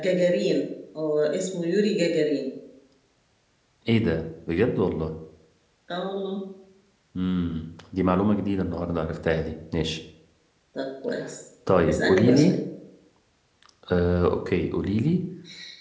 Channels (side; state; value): both; identical; correlation 1.00